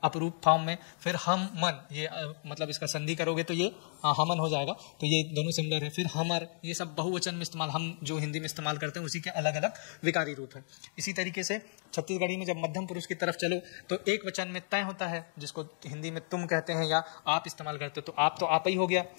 अपरूप फॉर्म में, फिर हम मन, ये मतलब इसका संधि करोगे तो ये हमन हो जाएगा। तो ये दोनों सिमिलर है। फिर हमर, ये सब बहुवचन में इस्तेमाल, हम जो हिंदी में इस्तेमाल करते हैं उसी के अलग अलग विकारी रूप है। इसी तरीके से छत्तीसगढ़ी में जब मध्यम पुरुष की तरफ चलो तो एक वचन में तय होता है, जिसको हिंदी में तुम कहते हैं या आप इस्तेमाल करते हो, तो आप ही हो गया।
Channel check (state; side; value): silent; right; digital silence